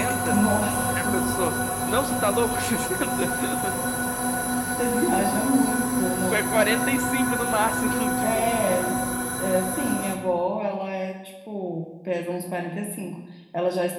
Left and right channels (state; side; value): identical; both; correlation 1.00